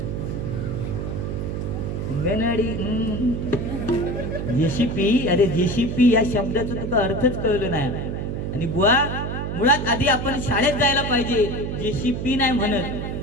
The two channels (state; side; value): noise; right; hum, 4 dB below the sound